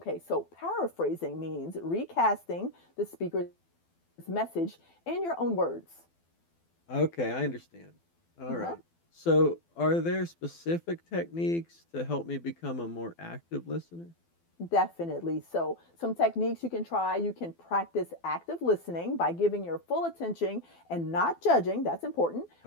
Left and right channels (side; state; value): right; late; 12 ms